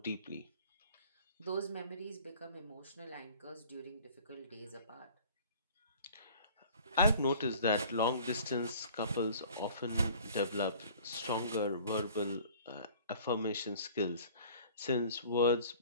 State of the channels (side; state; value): both; inverted; correlation -0.49